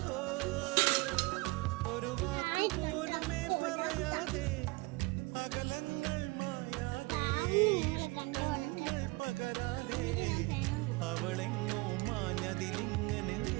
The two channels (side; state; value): left; quieter; 24.8 dB